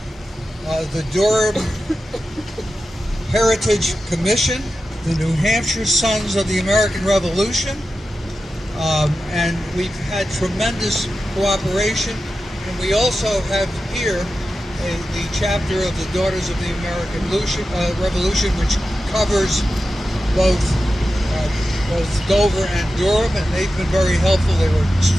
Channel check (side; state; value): both; normal; correlation 0.92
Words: the Durham Heritage Commission, the New Hampshire Sons of the American Revolution, and we've had tremendous cooperation. And we also have here the chapter of the Daughters of the American Revolution, which covers both Dover and Durham, and they've been very helpful. They were